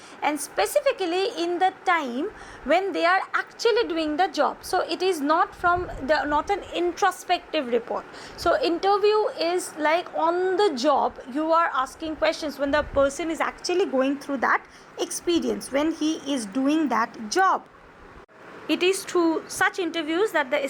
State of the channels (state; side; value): identical; both; correlation 1.00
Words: and specifically in the time when they are actually doing the job. So it is not an introspective report. So interview is like on the job, you are asking questions when the person is actually going through that experience, when he is doing that job. It is through such interviews that the